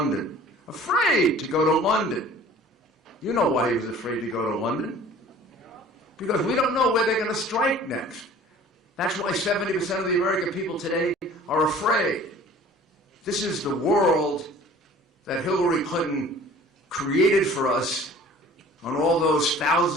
Afraid to go to London. You know why he was afraid to go to London? Because we don't know where they're going to strike next. That's why 70% of the American people today are afraid. This is the world that Hillary Clinton created for us on all those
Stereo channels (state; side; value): normal; both; correlation 0.48